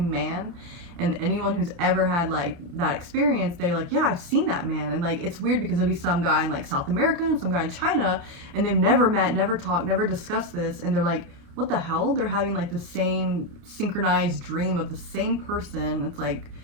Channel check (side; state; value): left; late; 29 ms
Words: man. And anyone who's ever had like that experience, they're like, yeah, I've seen that man. And like, it's weird because there'll be some guy in like South America and some guy in China, and they've never met, never talked, never discussed this. And they're like, what the hell? They're having like the same synchronized dream of the same person. It's like